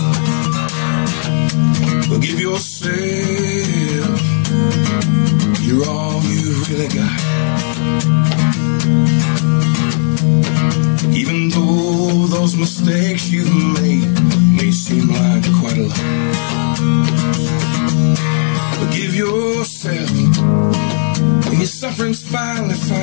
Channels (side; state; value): right; silent; digital silence